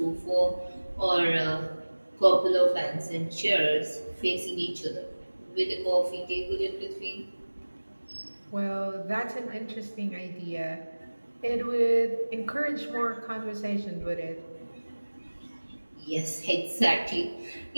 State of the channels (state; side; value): inverted; both; correlation -1.00